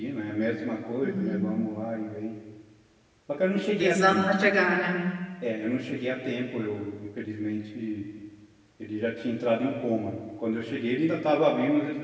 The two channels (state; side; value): identical; both; correlation 1.00